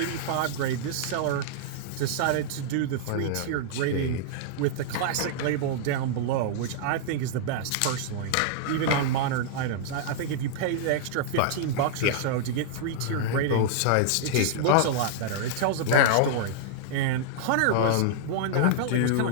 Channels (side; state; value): both; different; correlation -0.01